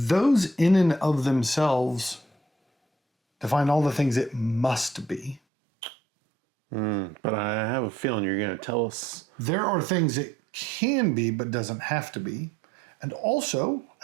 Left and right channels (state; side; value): drops out; left; at 5.4 s